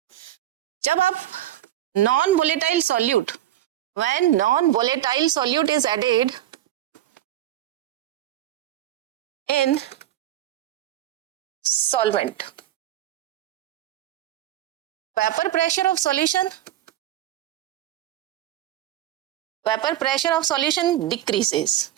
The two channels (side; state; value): left; quieter; 13.1 dB